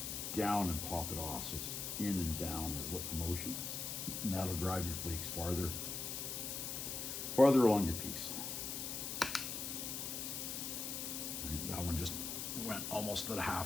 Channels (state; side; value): noise; left; hiss, 4 dB below the sound